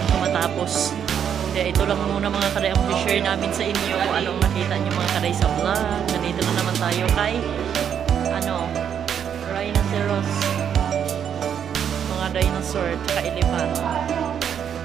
matapos. Kaya ito lang muna mga kaday ang share namin sa inyo kung anong nakita nyo mga kaday sa vlog. Nandito na naman tayo kay rhinoceros, mga dinosaur, tsaka elephant.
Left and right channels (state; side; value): quieter; left; 8.4 dB